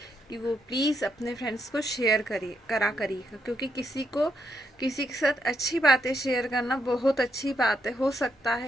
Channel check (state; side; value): normal; both; correlation 0.79